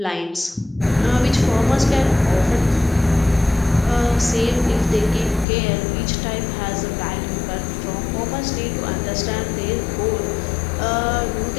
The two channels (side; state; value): right; drops out; at 5.5 s